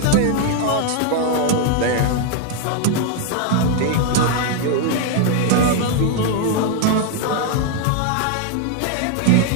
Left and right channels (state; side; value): different; both; correlation 0.00